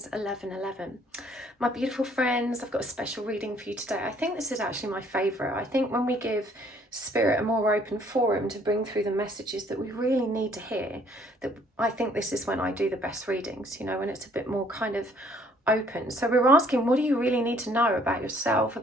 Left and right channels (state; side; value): normal; both; correlation 0.61